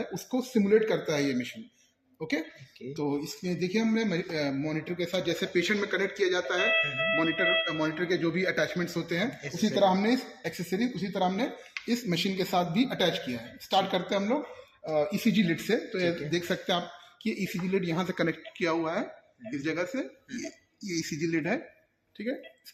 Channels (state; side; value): identical; both; correlation 1.00